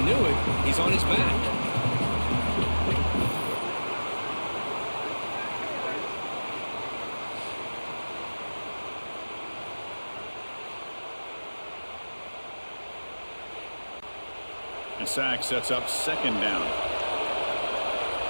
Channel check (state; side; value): inverted; both; correlation -1.00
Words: it, he's on his back. And sack sets up second down.